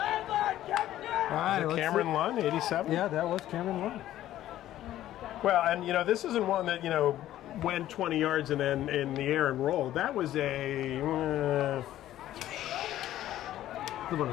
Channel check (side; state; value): right; quieter; 13.3 dB